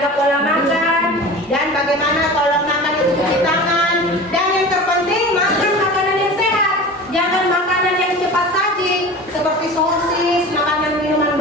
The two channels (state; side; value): normal; both; correlation 0.35